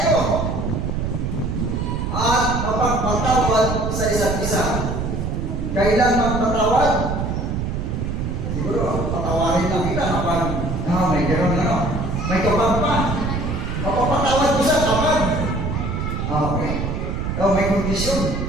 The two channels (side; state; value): right; noise; rumble, 2 dB below the sound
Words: At mapagpatawad sa isa't isa. Kailan magpatawad? Siguro, patawarin lang kita kapag may gano'n may kapag pa. Mapapatawad ko siya kapag okay. May kondisyon.